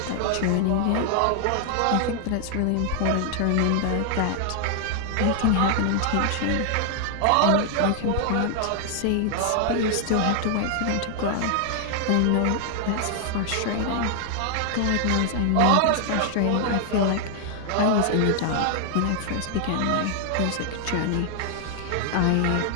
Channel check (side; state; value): both; different; correlation 0.00